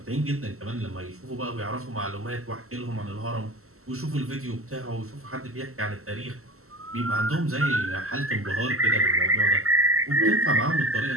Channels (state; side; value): late; left; 0.63 ms